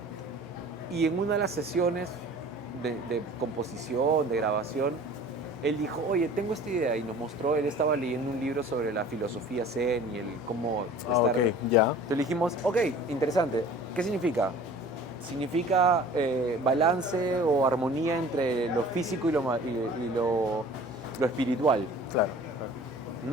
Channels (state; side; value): normal; both; correlation 0.46